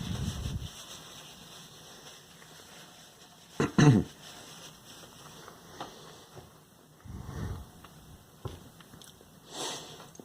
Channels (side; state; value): both; identical; correlation 1.00